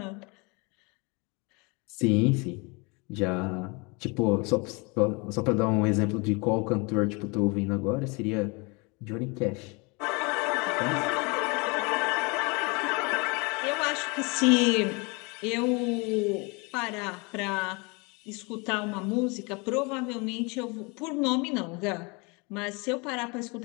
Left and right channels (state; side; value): quieter; right; 29.3 dB